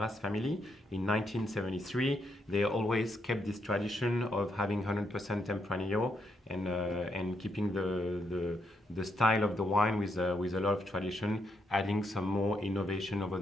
family in 1973, they always kept this tradition of having 100% Tempranillo and keeping the style of the wine with a lot of tradition, adding some more innovation over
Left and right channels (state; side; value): normal; both; correlation 0.78